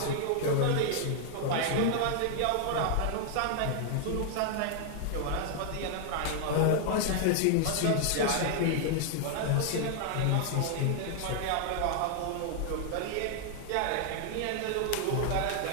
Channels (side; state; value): both; different; correlation 0.00